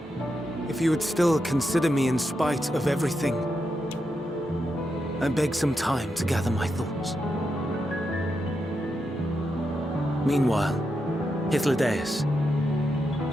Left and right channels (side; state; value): both; normal; correlation 0.85